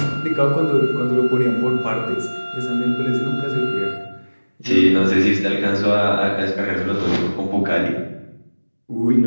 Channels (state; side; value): inverted; both; correlation -1.00